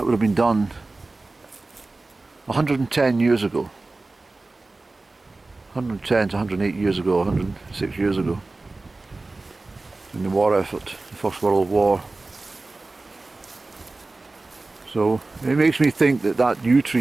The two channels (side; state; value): left; quieter; 3.3 dB